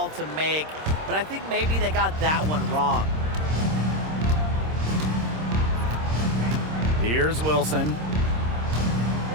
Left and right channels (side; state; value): left; late; 26 ms